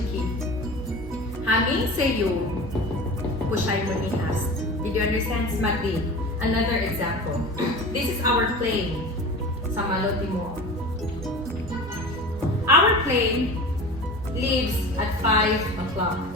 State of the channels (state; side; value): normal; both; correlation 0.34